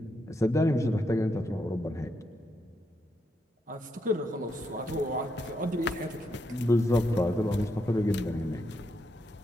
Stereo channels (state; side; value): normal; both; correlation 0.81